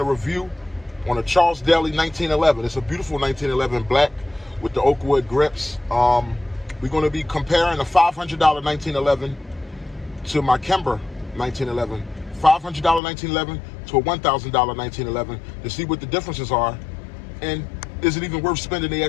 review on a Charles Daly 1911. It's a beautiful 1911 black with the oak wood grips. We're gonna be comparing a $500 1911 to my Kemper 1911. $500 1911 to a $1,000 1911 to see what the differences are, and is it even worth spending the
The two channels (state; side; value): drops out; right; at 13.0 s